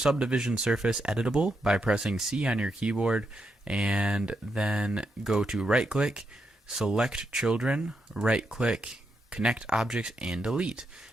surface editable by pressing C on your keyboard, and then go to right click, select children, right click, connect objects, and delete.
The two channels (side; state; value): both; normal; correlation 0.82